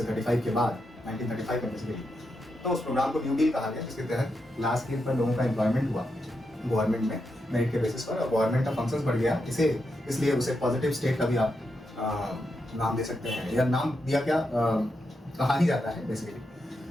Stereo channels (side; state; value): both; normal; correlation 0.85